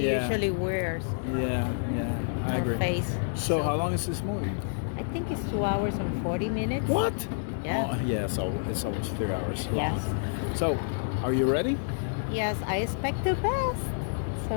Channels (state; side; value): silent; right; digital silence